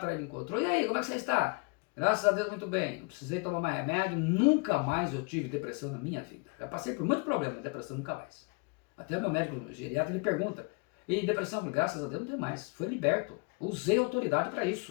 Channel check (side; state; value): right; quieter; 32.0 dB